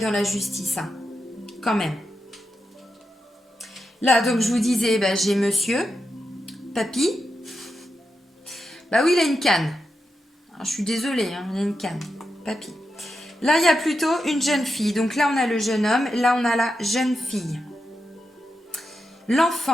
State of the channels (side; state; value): both; normal; correlation 0.88